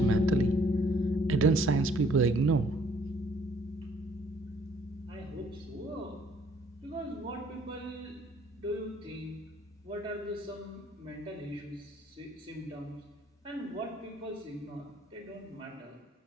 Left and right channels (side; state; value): both; normal; correlation 0.62